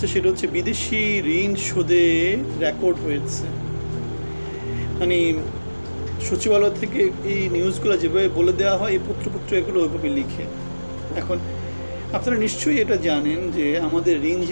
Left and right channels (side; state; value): both; inverted; correlation -1.00